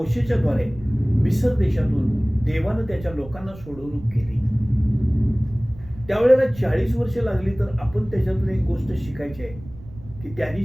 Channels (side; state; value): right; noise; rumble, 18 dB below the sound